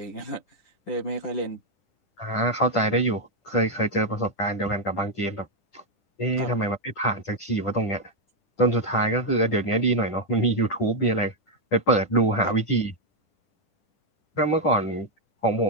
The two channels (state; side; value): late; right; 10 ms